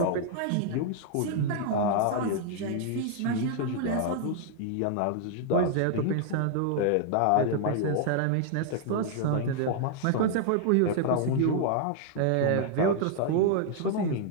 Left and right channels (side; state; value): both; different; correlation 0.00